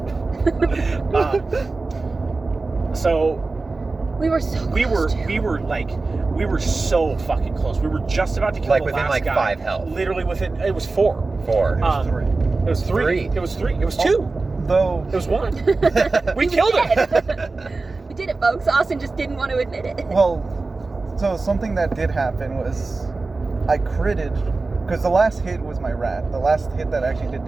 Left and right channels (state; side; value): quieter; left; 3.6 dB